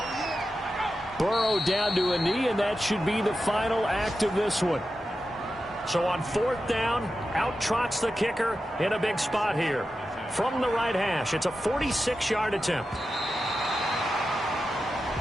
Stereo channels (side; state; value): both; normal; correlation 0.91